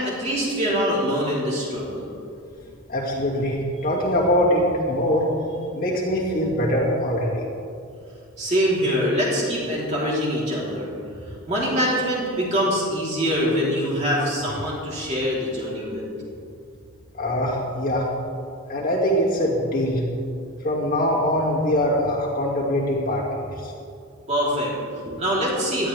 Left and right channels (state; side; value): normal; both; correlation 0.22